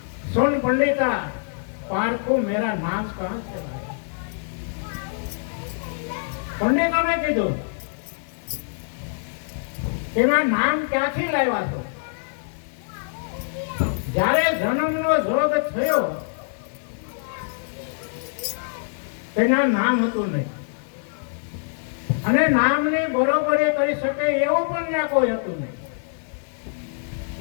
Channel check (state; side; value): silent; right; 62 dB below the other